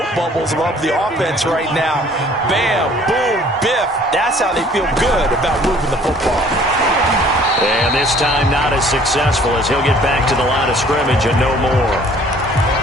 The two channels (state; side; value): normal; both; correlation 0.55